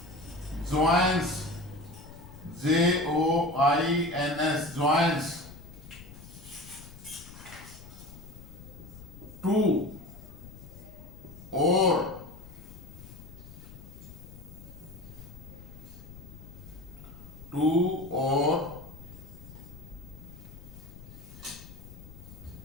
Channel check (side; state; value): left; noise; rumble, 16 dB below the sound